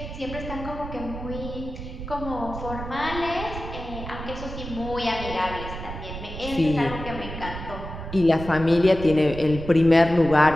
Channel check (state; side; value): noise; right; rumble, 9 dB below the sound